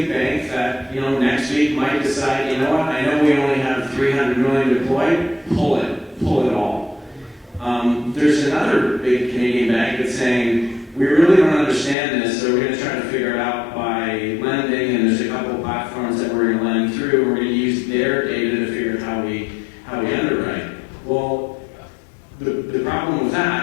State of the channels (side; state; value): right; drops out; at 12.0 s